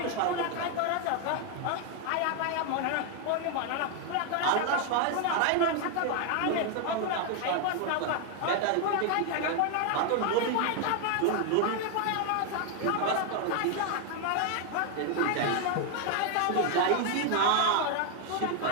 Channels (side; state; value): both; different; correlation 0.01